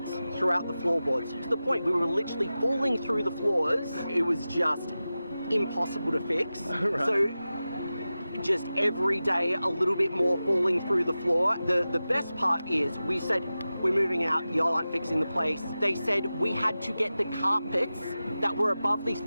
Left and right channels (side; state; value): both; inverted; correlation -0.94